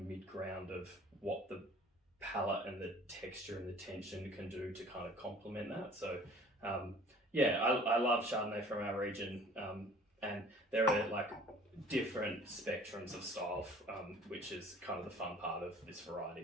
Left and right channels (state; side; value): normal; both; correlation 0.49